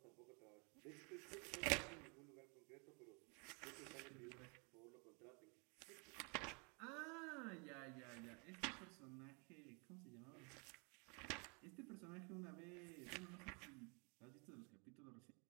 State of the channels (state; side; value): quieter; left; 33.3 dB